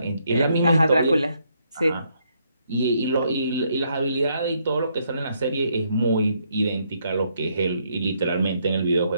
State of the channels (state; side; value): inverted; both; correlation -0.74